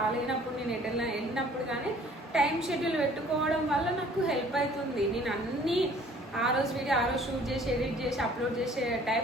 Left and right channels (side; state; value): both; normal; correlation 0.54